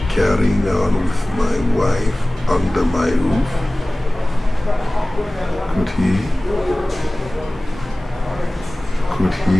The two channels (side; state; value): both; normal; correlation 0.98